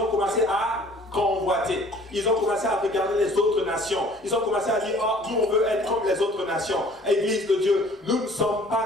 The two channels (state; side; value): normal; both; correlation 0.53